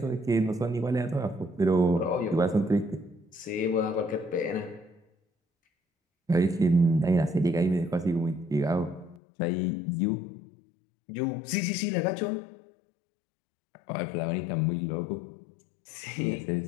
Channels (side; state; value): right; drops out; at 9.2 s